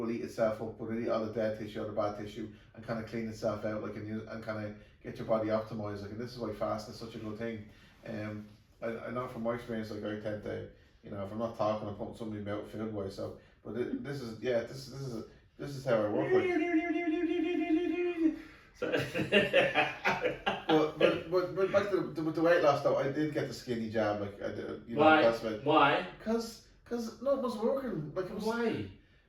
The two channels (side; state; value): both; identical; correlation 1.00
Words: eat itself up, but it'll eat all the dead tissue, all the bad tissue, and kind of clean itself out, like, and kind of get your body optimized. Like, and this is why fasting is such a good thing. I know from my experience, like, I tend to, you know, if I'm not talking, I'm putting something in my mouth food wise. So, but this is how I work. Like. but back to the weight loss though, I did get the skinny jab. Like, I did, you know, why? That's about, why? Because no, it was working. Like, it was. Why?